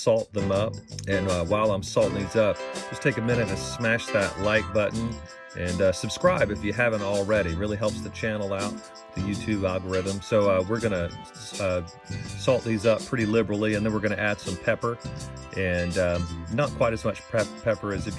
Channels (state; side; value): identical; both; correlation 1.00